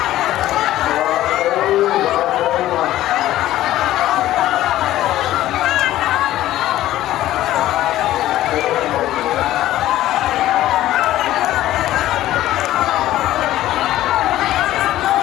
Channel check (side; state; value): right; quieter; 14.3 dB